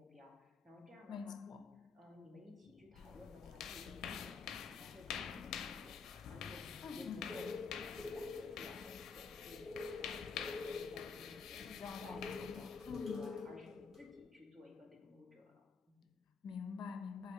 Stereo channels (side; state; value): right; quieter; 5.3 dB